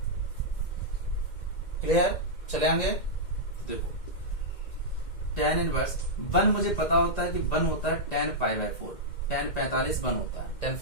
क्लियर चले आएंगे। देखो tan इनवर्स 1 मुझे पता होता है कि 1 होता है tan पाई बाय 4, tan 45 1 होता है, tan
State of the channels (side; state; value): right; late; 2.1 ms